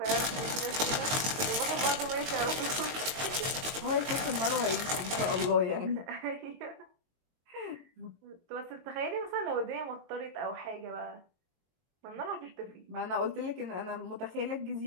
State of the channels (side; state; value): left; late; 22 ms